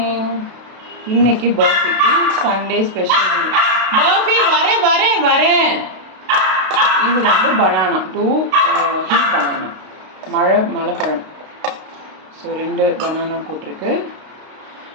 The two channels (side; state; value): left; late; 32 ms